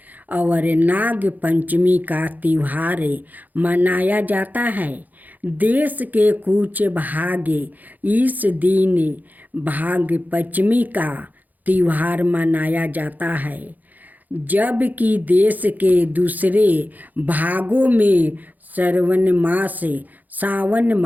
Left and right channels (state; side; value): late; left; 0.083 ms